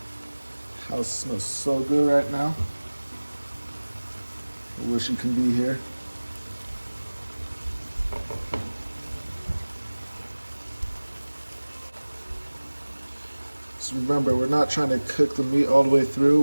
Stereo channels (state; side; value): inverted; both; correlation -1.00